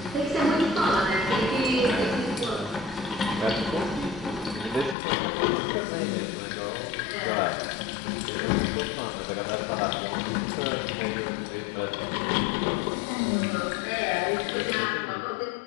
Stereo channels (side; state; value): right; drops out; at 5.0 s